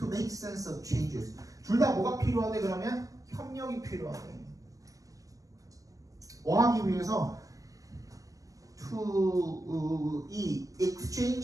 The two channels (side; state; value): left; late; 0.16 ms